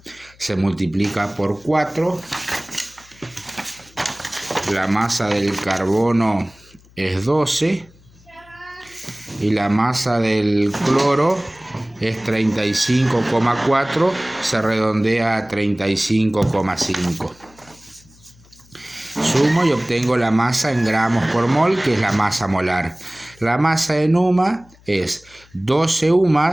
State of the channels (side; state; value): left; noise; hum, 27 dB below the sound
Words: se multiplica por 4. La masa del carbono es 12 y la masa del cloro es 35,4, se redondea a 35,5. Sumo y obtengo la masa en gramos por mol, que es la masa molar. La masa en UMA es 12